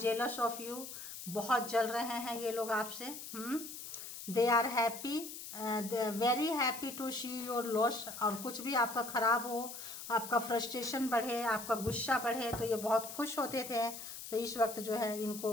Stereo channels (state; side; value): noise; left; hiss, 10 dB below the sound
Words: of you, बहुत जल रहे हैं ये लोग आपसे। They are happy, very happy to see your loss, और कुछ भी आपका खराब हो, आपका फ्रस्ट्रेशन बढ़े, आपका गुस्सा बढ़े, तो ये बहुत खुश होते थे, तो इस वक्त जो है इनको